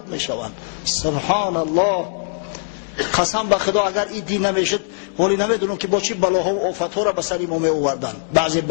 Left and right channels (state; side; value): silent; right; digital silence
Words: میشوند. سبحان الله. قسم به خدا اگر این دین نمیشد ولی نمیدونم که با چی بلاها و آفتها را به سر ما می آوردند بعضی